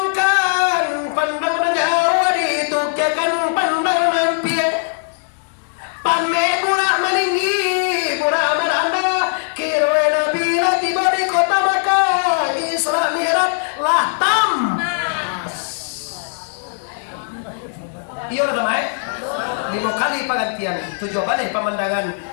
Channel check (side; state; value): right; silent; digital silence